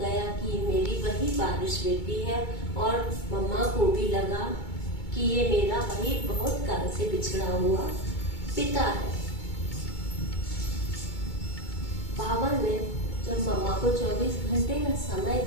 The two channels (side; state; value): right; late; 2.2 ms